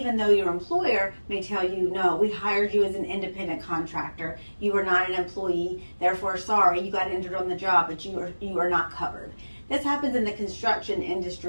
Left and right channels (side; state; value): both; inverted; correlation -1.00